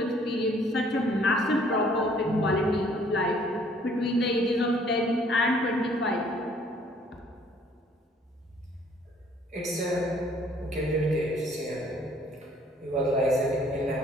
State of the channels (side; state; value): both; normal; correlation 0.60